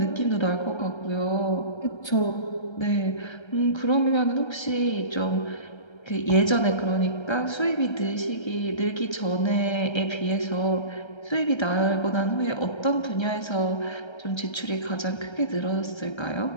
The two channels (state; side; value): late; right; 1.3 ms